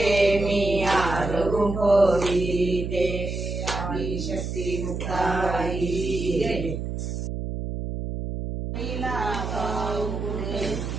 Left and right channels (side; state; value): right; noise; hum, 4 dB below the sound